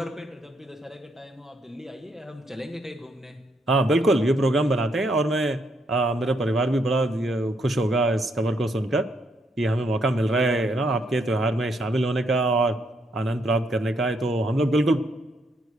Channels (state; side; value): normal; both; correlation 0.75